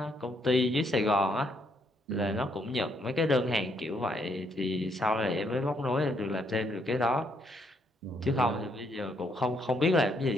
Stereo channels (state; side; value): normal; both; correlation 0.73